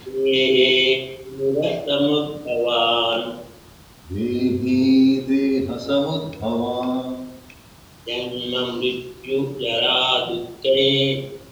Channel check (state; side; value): identical; both; correlation 1.00